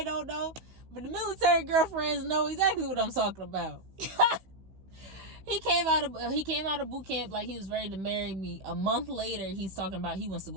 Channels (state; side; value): late; left; 16 ms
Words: don't know. But the military girlfriends know exactly what I'm talking about. He came out of boot camp like he was ready to marry me. A month later, he's talking about he wants to